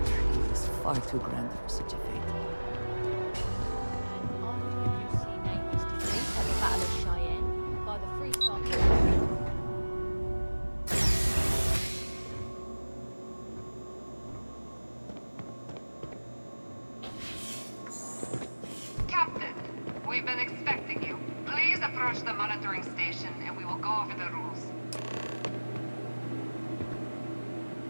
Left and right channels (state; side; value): inverted; both; correlation -1.00